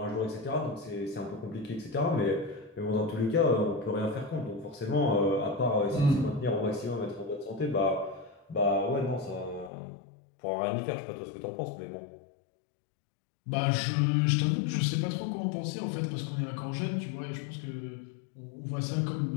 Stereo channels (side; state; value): right; drops out; at 9.7 s